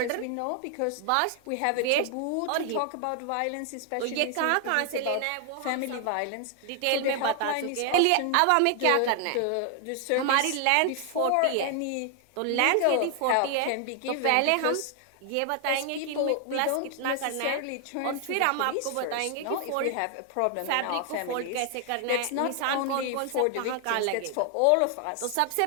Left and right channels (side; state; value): both; different; correlation 0.00